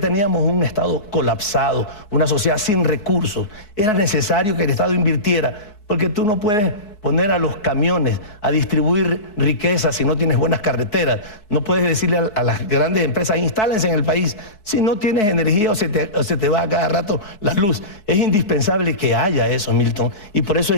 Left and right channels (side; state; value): right; late; 4.6 ms